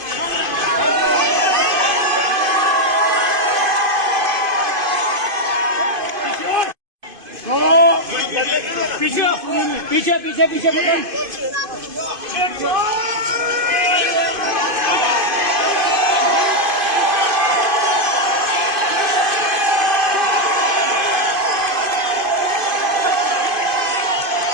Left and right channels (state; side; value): late; left; 2.5 ms